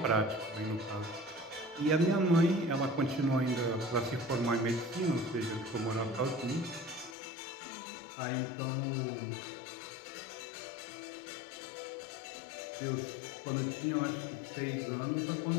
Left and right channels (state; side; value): drops out; right; at 7.2 s